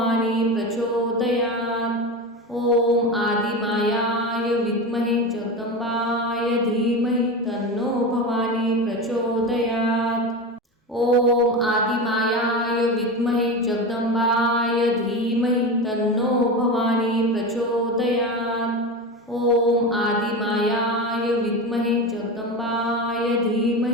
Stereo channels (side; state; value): both; normal; correlation 0.23